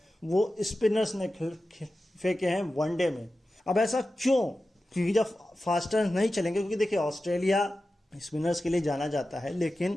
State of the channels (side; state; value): both; normal; correlation 0.93